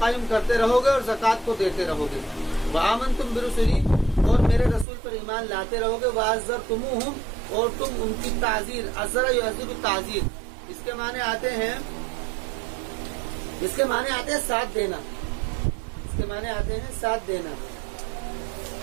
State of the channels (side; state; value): left; drops out; at 4.9 s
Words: کرتے رہو گے اور زکوٰۃ کو دیتے رہو گے، وآمنتم برسلی، اور میرے رسول پر ایمان لاتے رہو گے، وعزرتموہم، اور تم ان کی تعزیر، عزر یعزر تعزیر، اس کے معنی آتے ہیں ساتھ دینا، اس کے معنی آتے ہیں ساتھ دینا۔